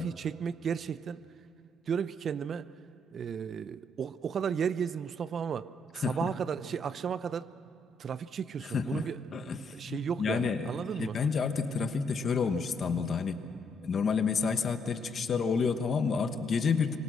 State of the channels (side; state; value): both; normal; correlation 0.73